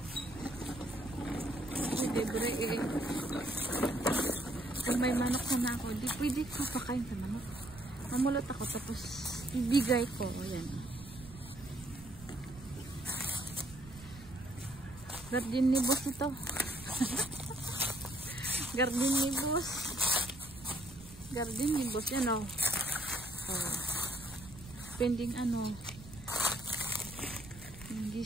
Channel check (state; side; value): noise; right; rumble, 17 dB below the sound